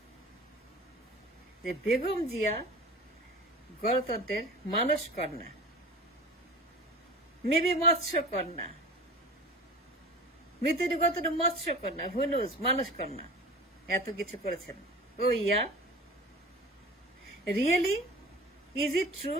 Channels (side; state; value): both; normal; correlation 0.38